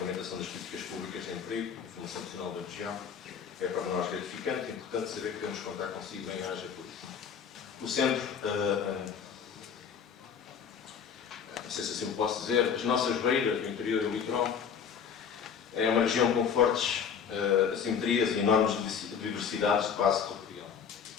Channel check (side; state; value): right; quieter; 7.1 dB